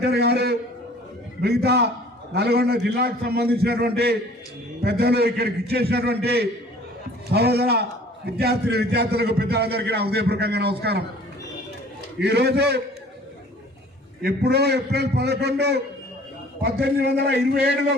గారు, మిగతా నల్గొండ జిల్లాకు సంబంధించినటువంటి పెద్దలు, ఇక్కడికి ఇచ్చేసినటువంటి సహోదర విద్యార్థులకు పెద్దలందరికీ నా హృదయపూర్వకంగా నమస్కారం. ఈరోజు ఎప్పుడో ఏప్రిల్ 11, 1827లో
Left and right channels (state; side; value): normal; both; correlation 0.50